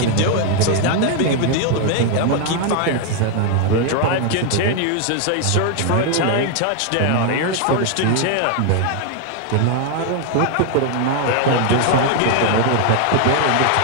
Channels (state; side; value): different; both; correlation 0.00